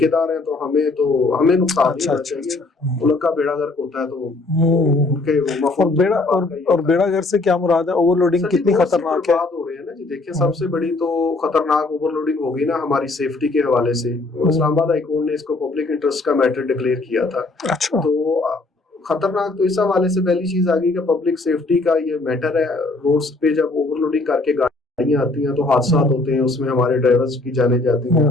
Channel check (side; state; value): right; quieter; 3.2 dB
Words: हैं तो हमें नुकसान नहीं होना चाहिए। मुल्क का बेड़ा गर्क होता है तो उनके और बेड़ा गर्क से क्या मुराद है? ओवरलोडिंग कितनी खतरनाक है? बात हो रही है ना जी, देखिए सबसे बड़ी तो खतरनाक ओवरलोडिंग होगी ना हमारी सेफ्टी के हवाले से। इस्लामाबाद हाई कोर्ट ने इसको पब्लिक इंटरेस्ट का मैटर डिक्लेयर किया था। अच्छा। तो खतरनाक तो इस हवाले से पहली चीज आ गई कि पब्लिक सेफ्टी का ये मैटर है। रोड्स पे जब ओवरलोडिंग करके गाड़ियां आती हैं तो हादसा होते हैं, उसमें हमारे ड्राइवर्स की जाने जाती हैं।